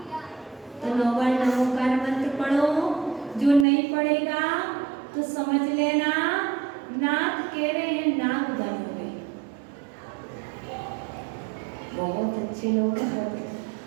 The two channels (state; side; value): drops out; left; at 3.7 s